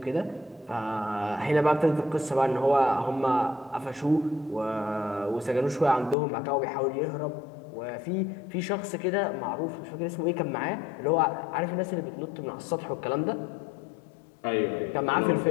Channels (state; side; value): drops out; right; at 6.2 s